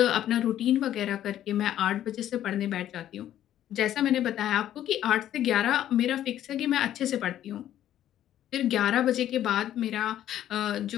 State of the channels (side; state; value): right; quieter; 11.8 dB